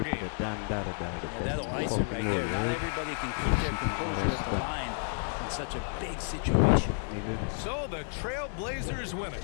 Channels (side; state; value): right; silent; 57 dB below the other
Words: game. Yeah, that'll ice it right there. Not everybody can keep their composure at the line in such a big situation. So the Trailblazers winning.